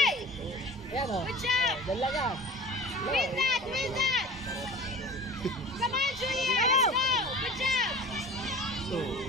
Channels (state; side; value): normal; both; correlation 0.39